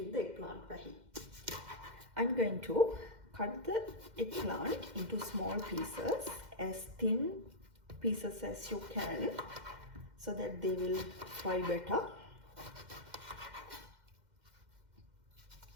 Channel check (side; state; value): left; late; 2.1 ms